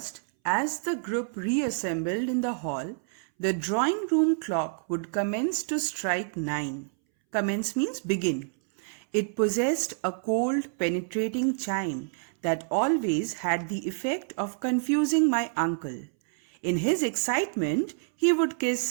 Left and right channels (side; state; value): left; silent; 59 dB below the other